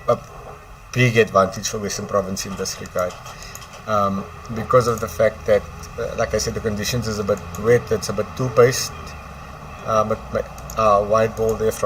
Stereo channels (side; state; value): both; identical; correlation 1.00